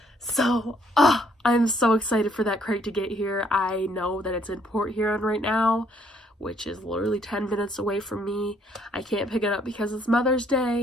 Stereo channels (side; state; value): both; normal; correlation 0.66